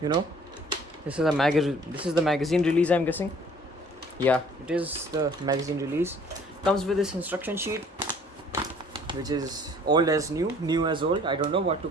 you know. This is the magazine release, I'm guessing. Yeah, it is the magazine release. Comes with this instruction sheet, which is old as new as old. I don't know what to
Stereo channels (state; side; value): normal; both; correlation 0.55